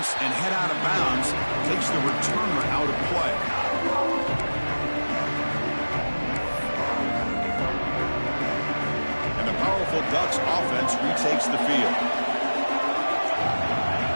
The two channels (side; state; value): both; inverted; correlation -1.00